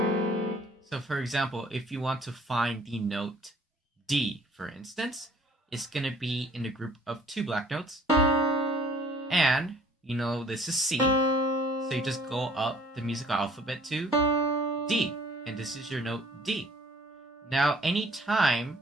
for example, if you want to find the note D, for instance, it's going to be in the group of 2 black notes. And, you know, this is C, so you just go up the musical alphabet to D, and this is your note D. Now,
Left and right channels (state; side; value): normal; both; correlation 0.55